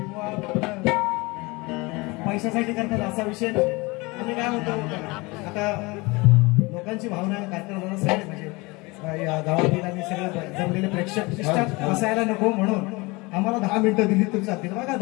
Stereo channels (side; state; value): right; quieter; 24.6 dB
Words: पैशासाठी करतात असा विषय नाही। आम्ही काय म्हणतो आता लोकांची भावना कार्यक्रमाला सगळे म्हणजे या गावातील आणि सगळे जमलेले प्रेक्षक असायला नको म्हणून आम्हाला 10 मिनिटं दिली तर चालतील। बघा